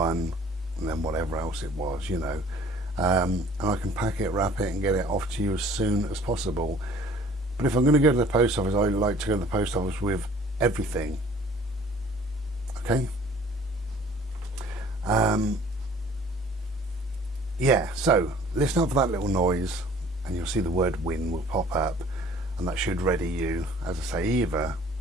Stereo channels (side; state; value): both; normal; correlation 0.52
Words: and then whatever else it was, you know. And I can pack it, wrap it and get it off to you as soon as possible. But if I'm going to go to the post office, I like to go to the post office with everything. Okay? Yeah, so listen up for that little noise, and you'll see the word win will pop up, and that should ready you, as I say, either